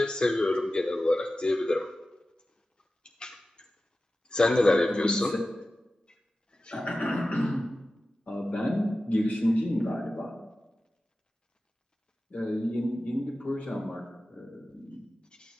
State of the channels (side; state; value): both; normal; correlation 0.95